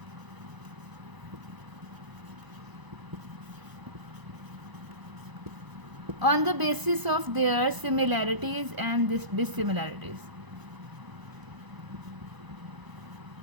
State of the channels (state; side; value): late; left; 1.0 ms